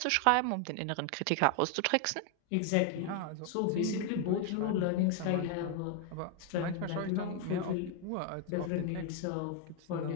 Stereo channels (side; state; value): both; different; correlation 0.00